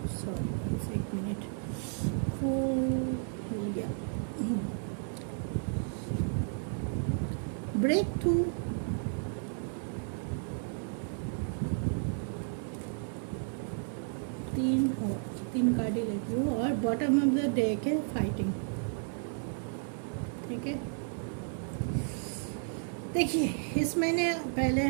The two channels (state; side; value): silent; left; 56 dB below the other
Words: सॉरी एक मिनट, ब्रेक थ्रू, तीन कार्ड ही लेती हूँ, और बॉटम ऑफ द डेक है फाइटिंग। ठीक है, देखिए इस महीने पहले